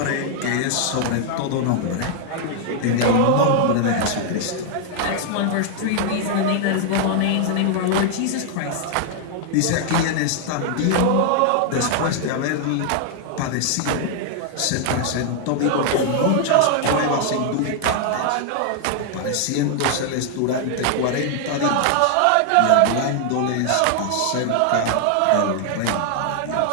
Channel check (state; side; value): different; both; correlation 0.00